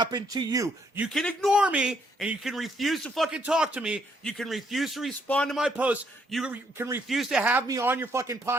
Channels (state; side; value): normal; both; correlation 0.71